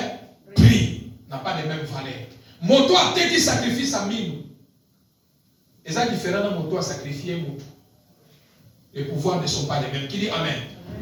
prix, n'a pas les mêmes valeurs. Moto a été sacrifice à mille. Et ça différent de moto à sacrifier moto. Les pouvoirs ne sont pas les mêmes. Qui dit Amen?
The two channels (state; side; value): identical; both; correlation 1.00